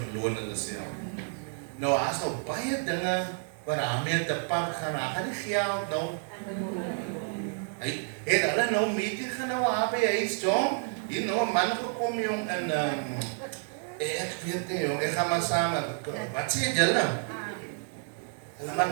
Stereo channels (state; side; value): silent; left; 58 dB below the other